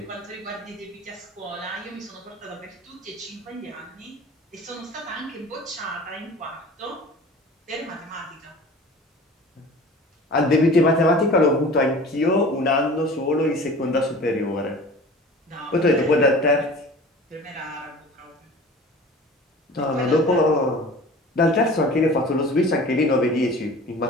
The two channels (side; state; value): both; normal; correlation 0.41